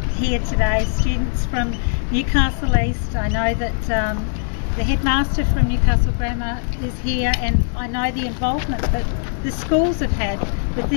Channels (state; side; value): silent; right; 66 dB below the other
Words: here today students from Newcastle East. I know that the headmaster from Newcastle Grammar is here, and I know the involvement that the schools have had with